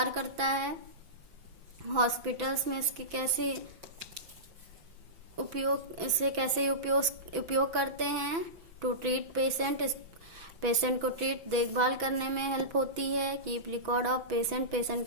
करता है। हॉस्पिटल्स में इसकी कैसे उपयोग करते हैं? टू ट्रीट पेशेंट, पेशेंट को देखभाल करने में हेल्प होती है। Keep record of patient, patient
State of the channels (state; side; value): late; left; 6.0 ms